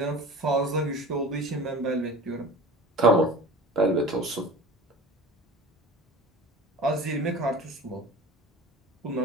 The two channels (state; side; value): normal; both; correlation 0.39